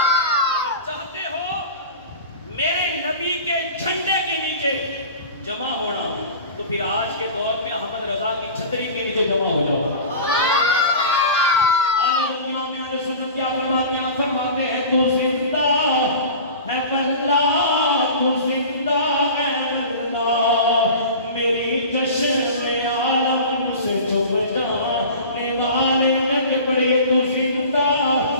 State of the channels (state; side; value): inverted; both; correlation -0.36